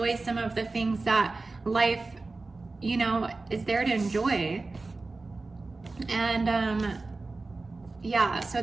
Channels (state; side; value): quieter; left; 3.5 dB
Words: some of the things that life, you know, is there to enjoy. And yeah, so